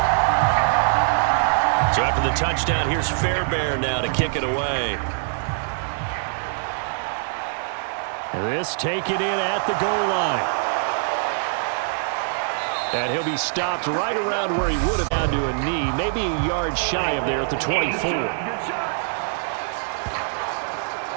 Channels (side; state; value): left; silent; 55 dB below the other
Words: So after the touchdown, here's Fairbairn now to kick it away. This taken in at the goal line. And he'll be stopped right around where he would have down to a knee, maybe a yard shy of there at the 24.